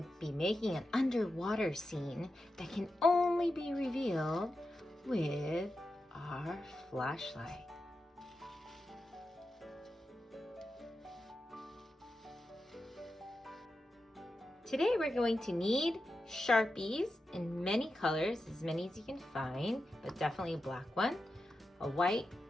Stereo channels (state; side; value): normal; both; correlation 0.90